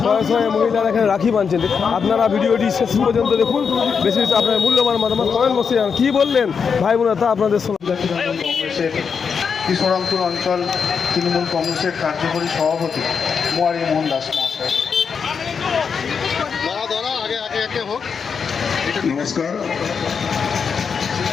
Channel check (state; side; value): quieter; right; 6.1 dB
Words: শয়ে মহিলারা এখানে রাখি বাঁধছেন। আপনারা ভিডিওটি শেষ পর্যন্ত দেখুন, বেশি বেশি আপনার মূল্যবান মতামত কমেন্ট বসে যান। কী বললেন ভাই বোনেরা তা আপনাদের শোনা। কংগ্রেসের কৃষ্ণরামপুর অঞ্চল তৃণমূল কংগ্রেসের কার্যকরী সভাপতি মোয়ারি মোহন দাস মহাশয়। নমস্কার।